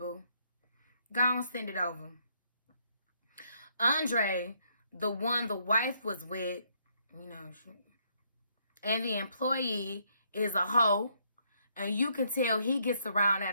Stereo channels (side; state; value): both; inverted; correlation -0.71